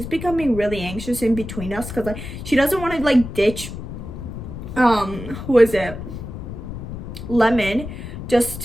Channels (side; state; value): left; noise; rumble, 9 dB below the sound